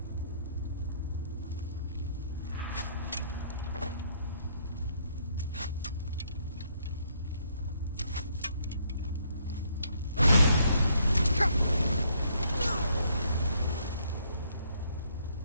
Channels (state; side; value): inverted; both; correlation -0.69